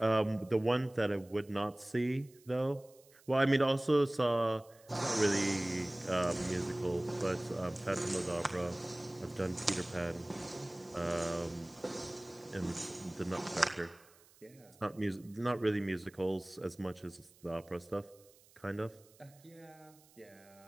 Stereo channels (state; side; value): noise; right; hiss, 27 dB below the sound